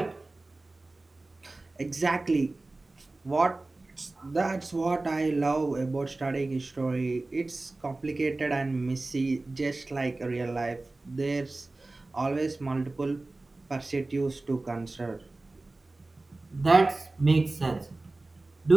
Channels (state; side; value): quieter; left; 3.1 dB